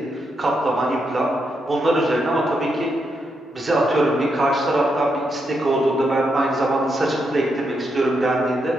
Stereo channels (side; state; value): both; normal; correlation 0.81